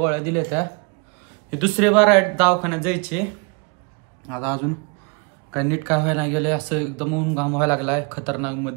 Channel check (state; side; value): quieter; left; 32.4 dB